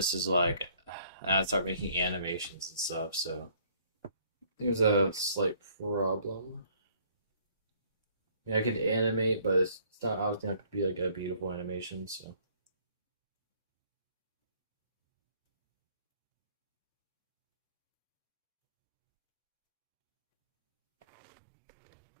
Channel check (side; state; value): both; inverted; correlation -0.60